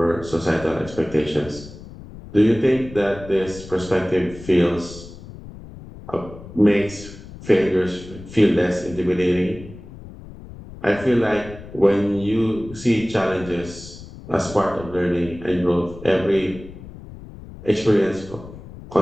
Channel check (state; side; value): noise; left; rumble, 16 dB below the sound